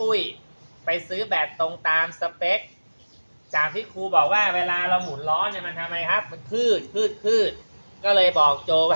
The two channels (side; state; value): both; inverted; correlation -1.00